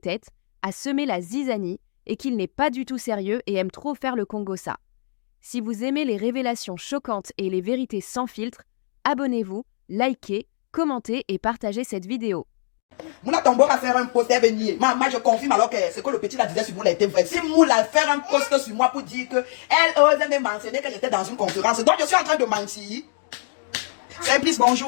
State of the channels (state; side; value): silent; right; digital silence